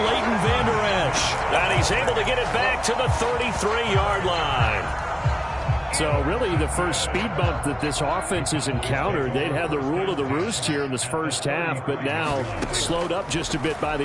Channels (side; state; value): both; identical; correlation 1.00